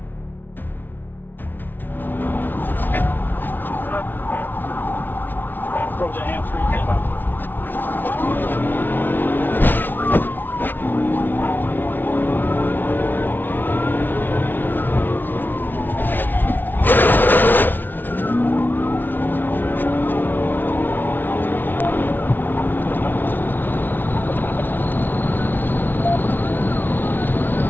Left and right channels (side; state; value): right; late; 0.091 ms